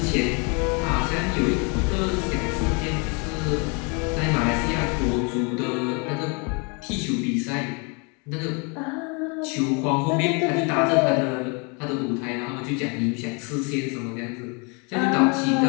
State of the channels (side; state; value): right; quieter; 33.2 dB